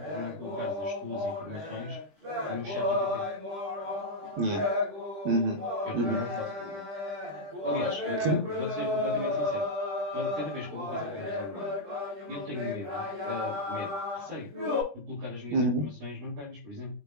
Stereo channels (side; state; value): left; late; 20 ms